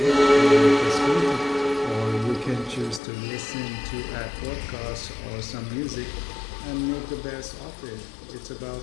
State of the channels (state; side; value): drops out; right; at 3.0 s